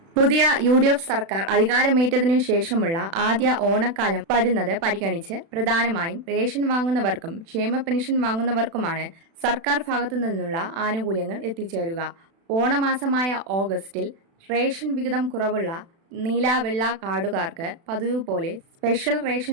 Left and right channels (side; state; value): left; late; 36 ms